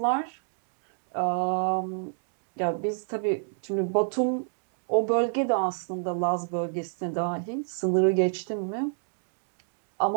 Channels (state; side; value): silent; left; digital silence